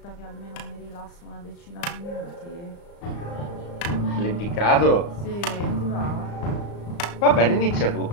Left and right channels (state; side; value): late; right; 35 ms